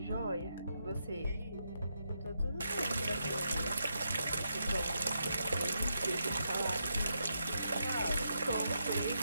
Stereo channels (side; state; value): both; inverted; correlation -0.82